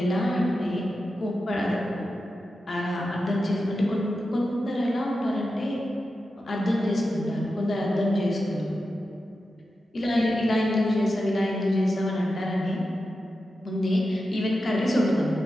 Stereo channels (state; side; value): normal; both; correlation 0.91